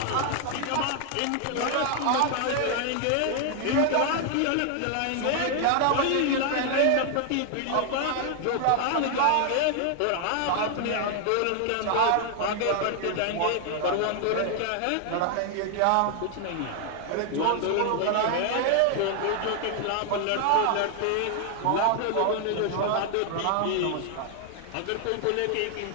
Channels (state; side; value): different; both; correlation 0.00